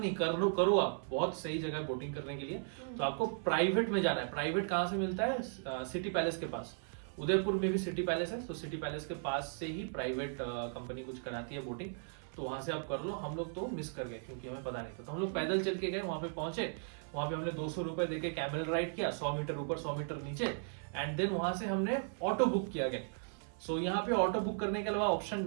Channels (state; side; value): silent; left; 53 dB below the other